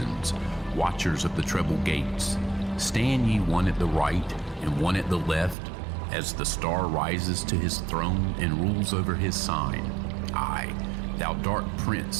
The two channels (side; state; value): left; drops out; at 5.6 s